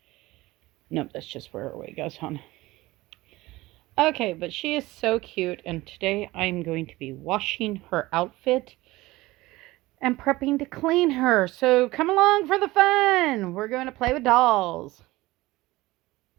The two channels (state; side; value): quieter; left; 19.2 dB